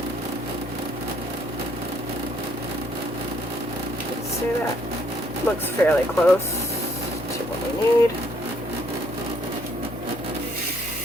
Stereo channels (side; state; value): left; noise; hum, 12 dB below the sound